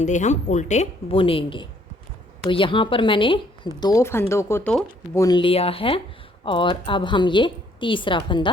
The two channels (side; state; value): both; normal; correlation 0.65